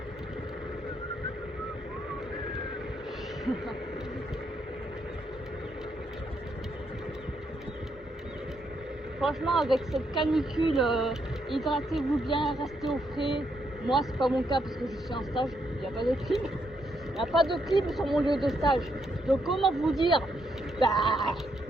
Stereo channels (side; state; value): both; normal; correlation 0.77